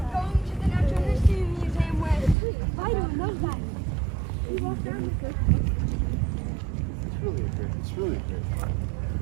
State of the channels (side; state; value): left; drops out; at 2.4 s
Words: Going to the Natural History Museum where I don't know that. It's really great.